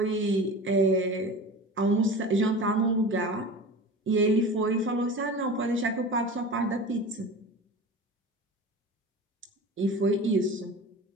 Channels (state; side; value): normal; both; correlation 0.34